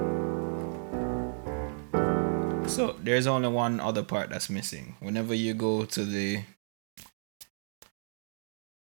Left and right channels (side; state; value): left; silent; digital silence